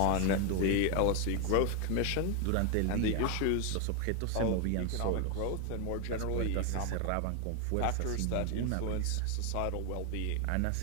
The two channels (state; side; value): different; both; correlation 0.01